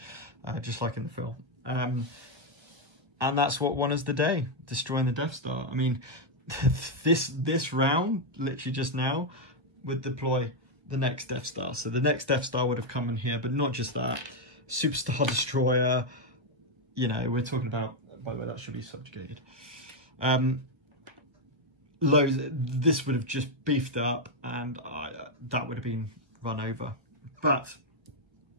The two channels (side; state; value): left; late; 1.4 ms